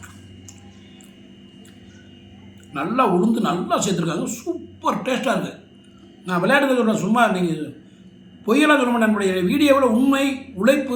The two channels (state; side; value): identical; both; correlation 1.00